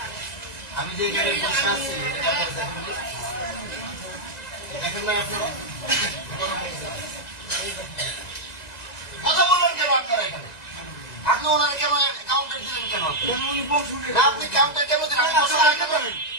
আমি যে গাড়ি বসে আছি দেখেন না আপনারা কথা বললেন কেন আপনারা এখানে? আপনি ওনার কেন কাউন্টার দিলেন কেন? আপনি কাউন্টার কেন দিলেন?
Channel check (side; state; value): right; late; 2.0 ms